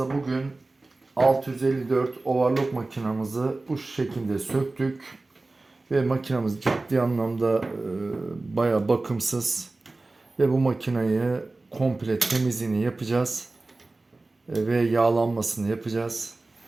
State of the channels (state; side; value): quieter; left; 3.2 dB